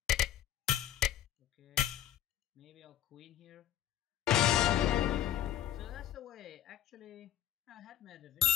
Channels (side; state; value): right; quieter; 11.6 dB